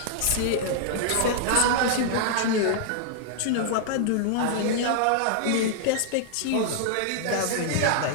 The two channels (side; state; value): both; different; correlation -0.01